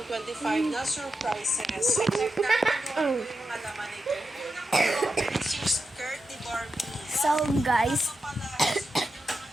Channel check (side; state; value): both; normal; correlation 0.88